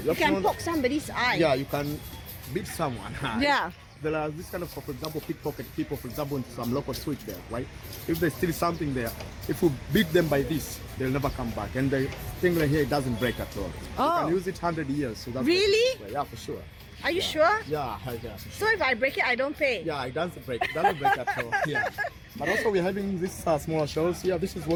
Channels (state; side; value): identical; both; correlation 1.00